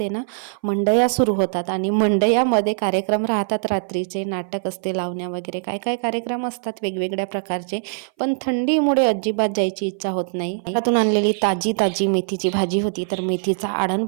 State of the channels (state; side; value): silent; left; 60 dB below the other